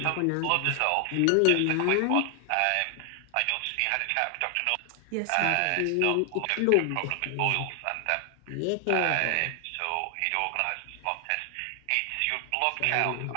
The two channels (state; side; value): different; both; correlation 0.00